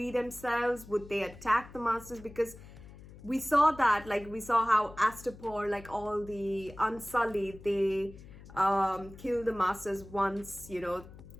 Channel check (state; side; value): noise; left; hum, 18 dB below the sound